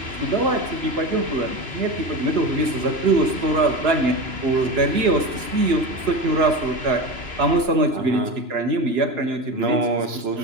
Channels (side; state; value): left; late; 2.9 ms